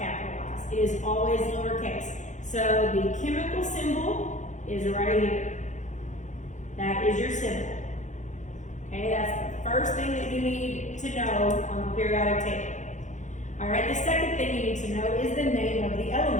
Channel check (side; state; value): right; late; 0.35 ms